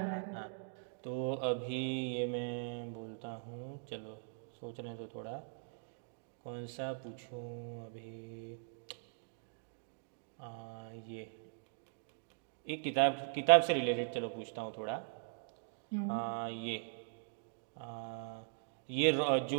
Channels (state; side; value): silent; left; digital silence